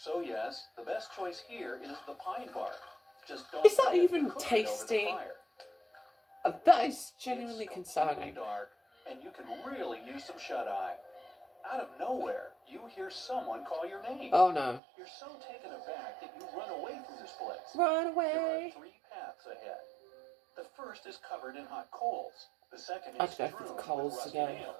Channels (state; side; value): drops out; left; at 14.8 s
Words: yes, the best choice here is the pine bark. Just don't Is that forget to even cook it over the tasty? fire. That is genuinely It's concerning. completely dark, and you can really use some shut-eye. Out of nowhere, you hear someone call your name. Oh no. You're so taken aback that you run away from this place. Run There away! are 3 paths ahead. The first is covered in hot coals. The second I'd is go for strewn the with coals rusty again.